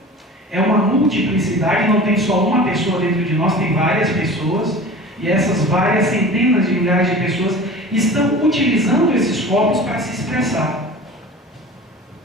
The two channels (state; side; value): normal; both; correlation 0.38